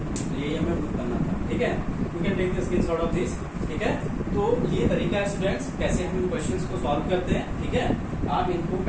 तो यही हमें प्रूव करना था, ठीक है। You can take the screenshot of this, ठीक है। तो ये तरीका है स्टूडेंट्स कैसे हम इन क्वेश्चंस को सॉल्व करते हैं, ठीक है। आप इनको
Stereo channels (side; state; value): both; identical; correlation 1.00